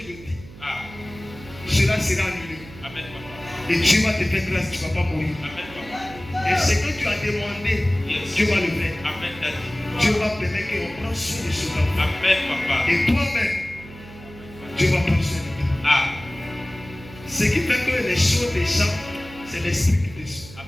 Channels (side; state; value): right; noise; hum, 18 dB below the sound